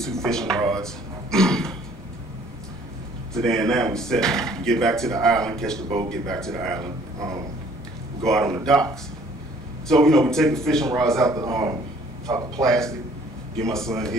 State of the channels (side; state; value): both; normal; correlation 0.57